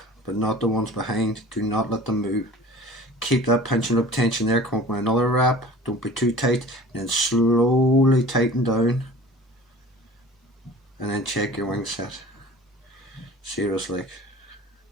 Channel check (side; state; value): both; normal; correlation 0.43